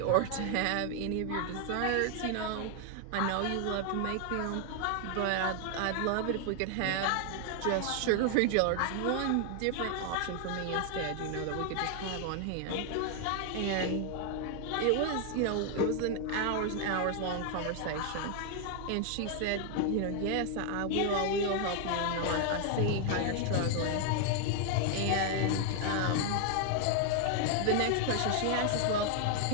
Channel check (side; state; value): both; different; correlation 0.00